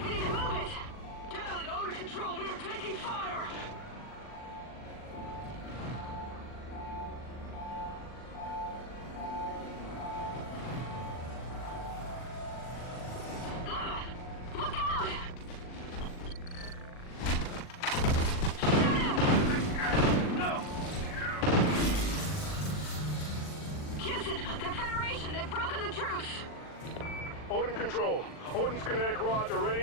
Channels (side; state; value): right; late; 40 ms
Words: Odin Control. Odin's kinetic rods are